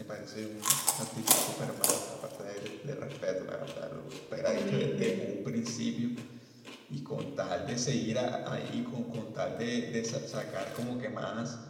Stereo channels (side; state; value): both; identical; correlation 1.00